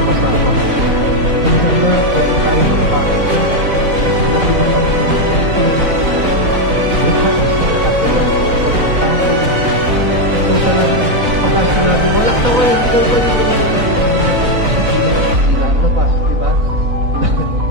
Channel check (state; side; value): late; left; 4.0 ms